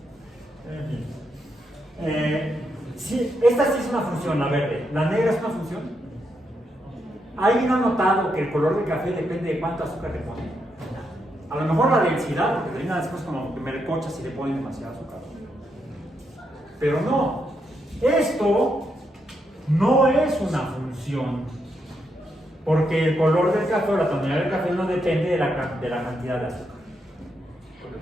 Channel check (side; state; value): both; normal; correlation 0.81